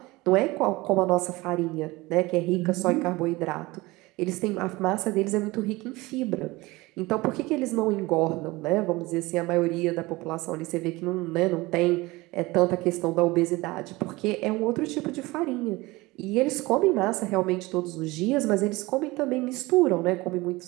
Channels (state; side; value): quieter; left; 21.5 dB